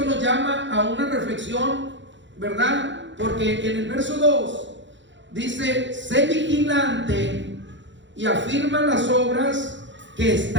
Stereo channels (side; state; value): left; late; 0.54 ms